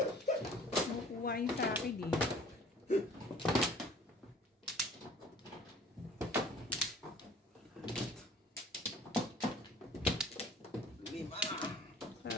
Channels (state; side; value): normal; both; correlation 0.50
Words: Makukuha yun sa akin eh.